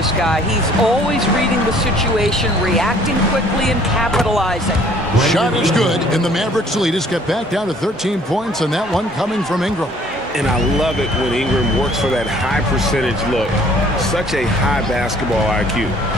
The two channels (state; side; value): normal; both; correlation 0.57